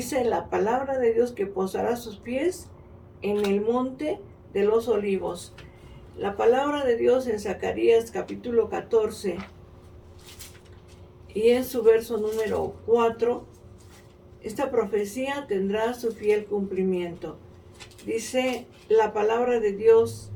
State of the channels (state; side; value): identical; both; correlation 1.00